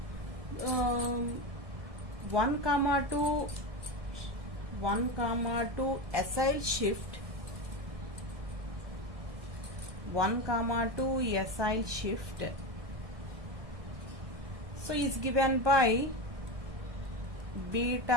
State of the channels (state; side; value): late; left; 1.2 ms